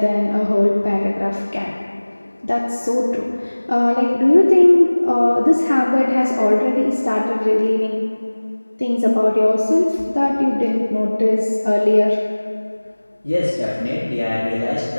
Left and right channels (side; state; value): both; inverted; correlation -1.00